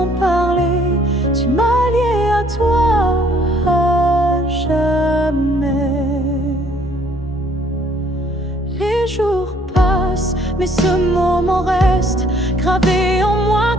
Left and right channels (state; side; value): normal; both; correlation 0.62